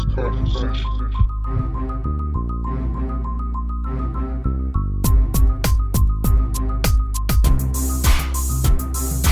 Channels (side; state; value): both; identical; correlation 1.00